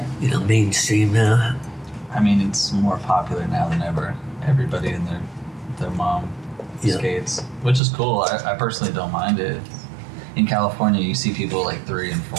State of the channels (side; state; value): left; drops out; at 7.8 s